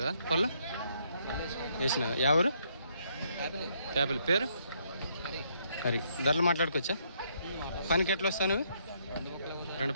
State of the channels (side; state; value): both; inverted; correlation -0.71